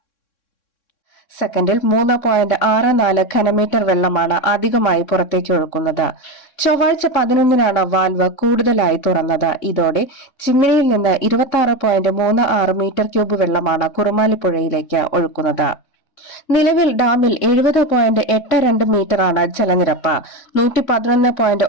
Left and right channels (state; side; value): late; right; 3.6 ms